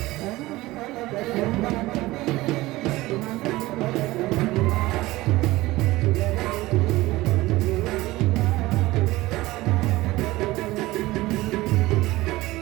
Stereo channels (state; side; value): quieter; left; 18.8 dB